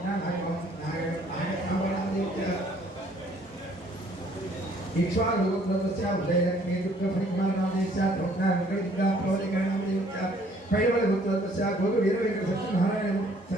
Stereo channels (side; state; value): both; normal; correlation 0.60